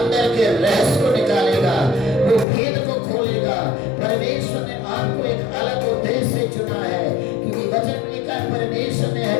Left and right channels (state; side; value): drops out; right; at 2.5 s